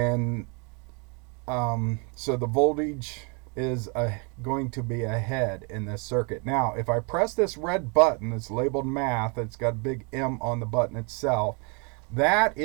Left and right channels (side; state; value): left; quieter; 34.4 dB